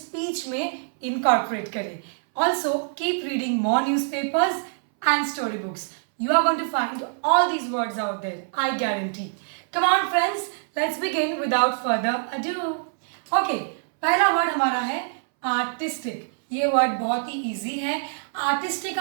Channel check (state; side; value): silent; left; 62 dB below the other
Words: में इनकॉर्पोरेट करें. Also keep reading more newspapers and story books. You are going to find all these words out there, I guarantee. Come on friends, let's begin without further ado. Okay, पहला वर्ड हमारा है आर्टिस्टिक. ये वर्ड बहुत ही इजी है. आर्टिस्टिक